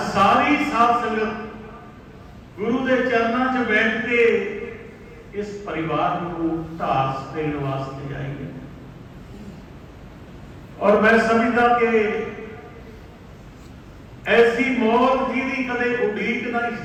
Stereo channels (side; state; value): both; identical; correlation 1.00